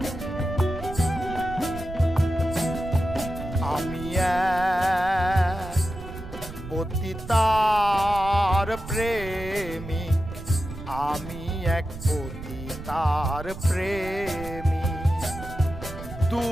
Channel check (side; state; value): right; noise; rumble, 11 dB below the sound